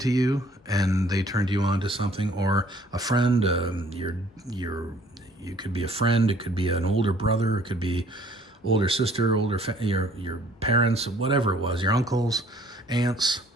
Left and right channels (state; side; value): normal; both; correlation 0.57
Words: to you and they turned you on to something, or a friend. You could be a friend, it could be an older brother, it could be older sister, your parents, whatever it was, your uncles, aunts,